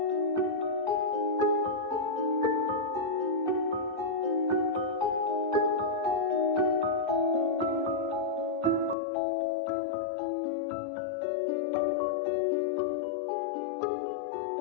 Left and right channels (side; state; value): right; drops out; at 9.0 s